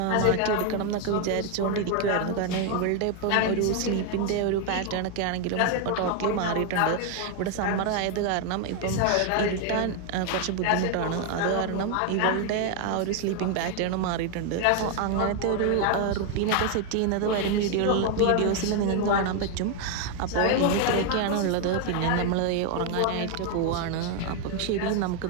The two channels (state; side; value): different; both; correlation 0.01